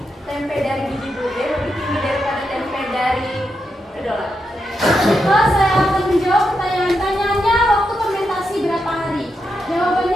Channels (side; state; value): both; normal; correlation 0.85